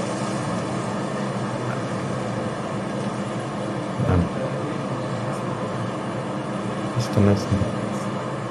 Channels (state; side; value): identical; both; correlation 1.00